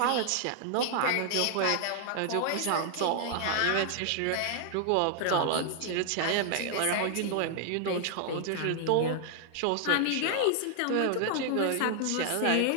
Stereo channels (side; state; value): both; different; correlation 0.00